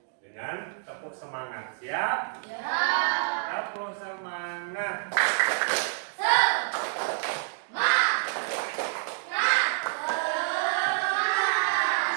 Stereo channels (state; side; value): silent; left; digital silence